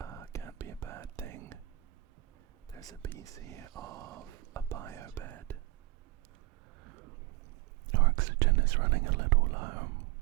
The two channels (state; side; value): quieter; left; 19.2 dB